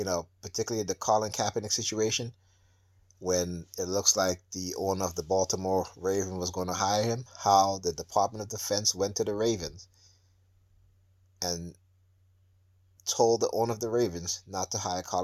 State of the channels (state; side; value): identical; both; correlation 1.00